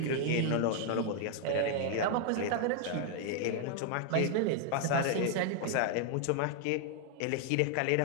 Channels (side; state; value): both; different; correlation 0.00